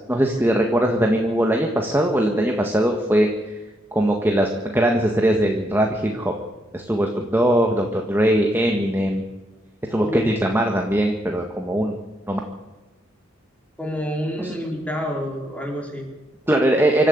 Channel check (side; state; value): both; normal; correlation 0.78